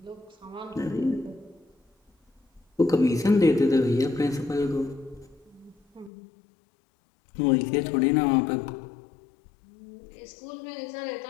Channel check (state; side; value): drops out; right; at 6.1 s